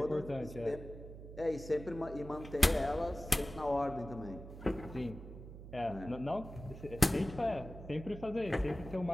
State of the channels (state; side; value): noise; right; hum, 13 dB below the sound